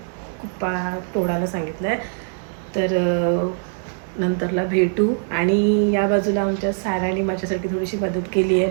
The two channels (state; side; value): silent; left; 64 dB below the other